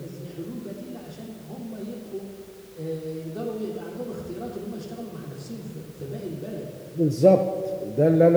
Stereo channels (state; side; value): identical; both; correlation 1.00